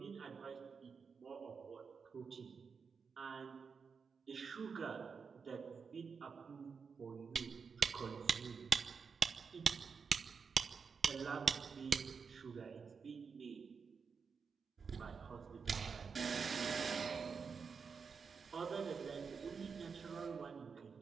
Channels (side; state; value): left; quieter; 5.6 dB